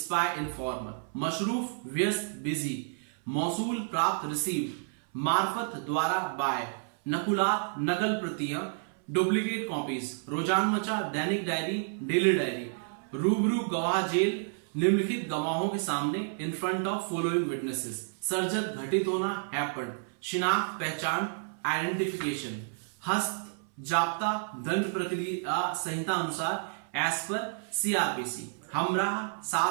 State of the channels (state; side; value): silent; left; 57 dB below the other